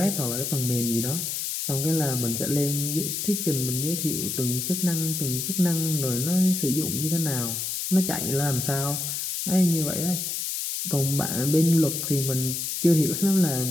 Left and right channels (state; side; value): noise; left; hiss, 3 dB below the sound